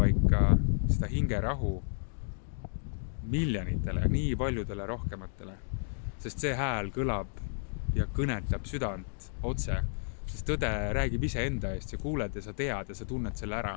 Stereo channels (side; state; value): right; silent; digital silence